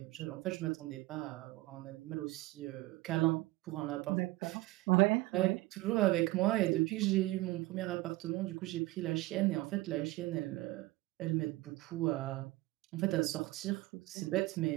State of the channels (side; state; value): left; quieter; 19.4 dB